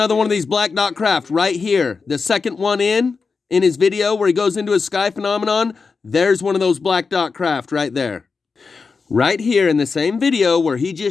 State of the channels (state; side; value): quieter; right; 4.8 dB